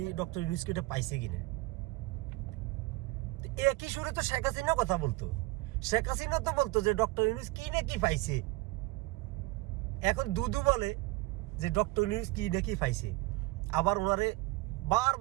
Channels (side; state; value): left; quieter; 20.6 dB